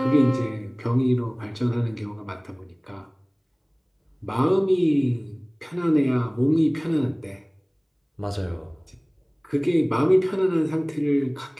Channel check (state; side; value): identical; both; correlation 1.00